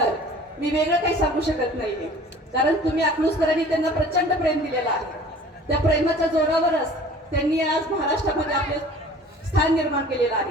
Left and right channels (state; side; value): normal; both; correlation 0.46